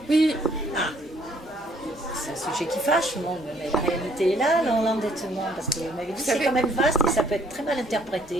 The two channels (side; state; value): both; normal; correlation 0.63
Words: Oui. C'est un sujet qui fâche, mais la réalité est là, l'endettement, parce que vous m'avez dit c'est quand même vaste et ça peut être très mal